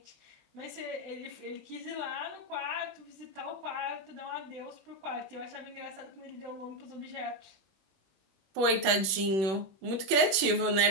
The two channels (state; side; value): late; left; 21 ms